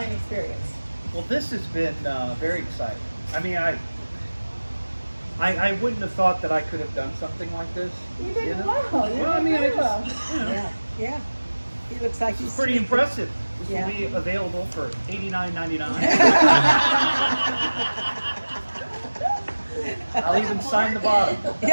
experience. Well, this has been very exciting. I mean, I wouldn't have thought that I could have done something like this. You did know? well. You Well, I did mean, I very just, well. you know, Yeah. Yeah. He looks like he's it's pretty impressive. This Yeah. will be available for $89.99. I'll even sign the bottom.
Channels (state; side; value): inverted; both; correlation -1.00